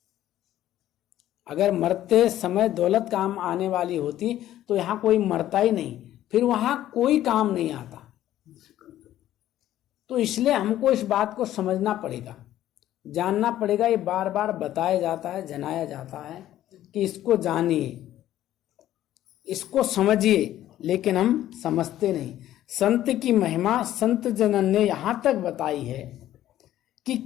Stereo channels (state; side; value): quieter; right; 13.0 dB